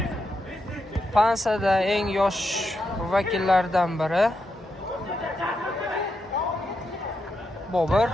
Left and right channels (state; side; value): normal; both; correlation 0.84